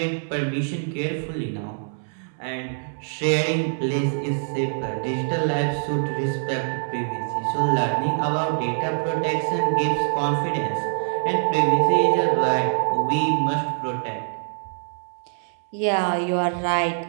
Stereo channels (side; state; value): left; silent; digital silence